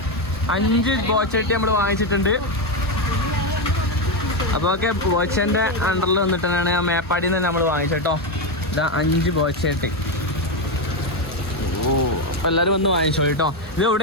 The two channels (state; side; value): normal; both; correlation 0.08